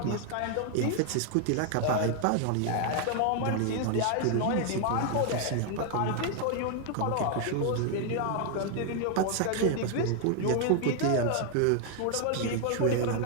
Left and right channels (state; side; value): different; both; correlation 0.00